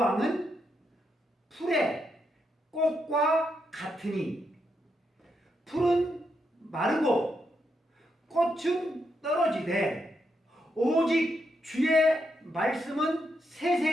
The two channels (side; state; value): both; normal; correlation 0.81